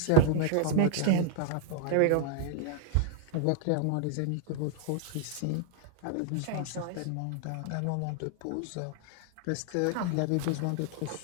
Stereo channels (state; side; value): different; both; correlation -0.01